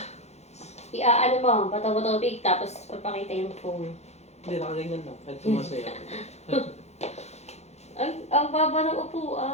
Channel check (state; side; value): late; right; 0.32 ms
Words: Iaano mo, bato-bato big, tapos papakita yung phone. Hindi, nakaganyan lang. Kahit sumasaya. Ang baba ng